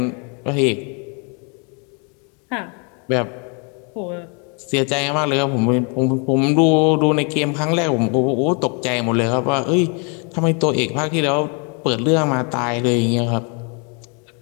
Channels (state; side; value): quieter; right; 36.4 dB